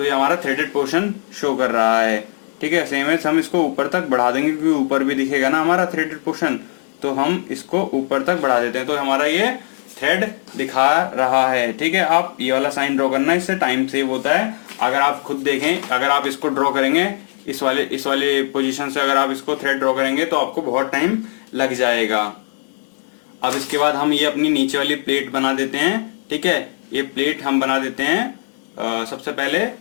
ये हमारा थ्रेडेड पोर्शन शो कर रहा है। ठीक है, सेम है, हम इसको ऊपर तक बढ़ा देंगे क्योंकि ऊपर भी दिखेगा ना हमारा थ्रेडेड पोर्शन, तो हम इसको ऊपर तक बढ़ा देते हैं। तो हमारा ये थ्रेड दिखा रहा है। ठीक है, आप ये वाला साइन ड्रॉ करना, इससे टाइम सेव होता है। अगर आप खुद देखें, अगर आप इसको ड्रॉ करेंगे इस वाले पोजीशन से, अगर आप इसको थ्रेड ड्रॉ करेंगे तो आपको बहुत टाइम लग जाएगा। अब इसके बाद हम ये अपनी नीचे वाली प्लेट बना देते हैं। ठीक है, ये प्लेट हम बना देते हैं सबसे पहले।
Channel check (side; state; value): right; silent; digital silence